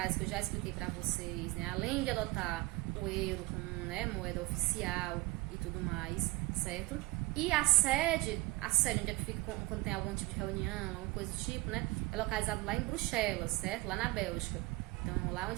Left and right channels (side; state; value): left; quieter; 20.9 dB